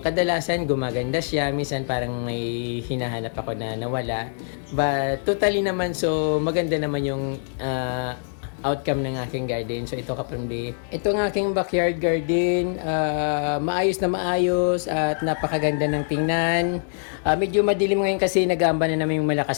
kadalasan gumaganda siya, minsan parang may hinahanap ako na nawala. But totally naman so maganda naman yung outcome ng aking garden. So ito ka-Promdi. Ito ang aking backyard garden. Maayos na maayos at napakaganda ng tingnan. Medyo madilim ngayon kasi nag-aamba na naman yung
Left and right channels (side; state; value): right; silent; digital silence